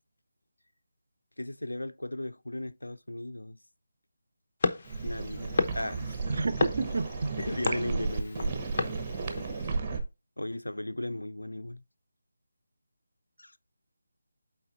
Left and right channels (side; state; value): both; inverted; correlation -0.88